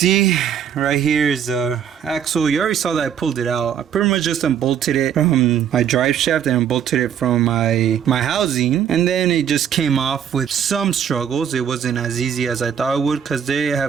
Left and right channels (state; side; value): quieter; left; 8.7 dB